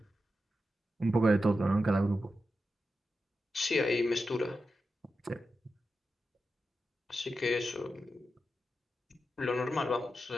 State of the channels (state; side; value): normal; both; correlation 0.90